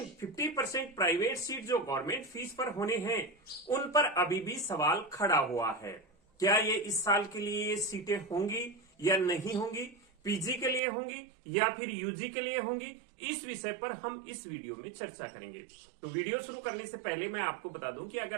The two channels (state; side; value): drops out; left; at 10.8 s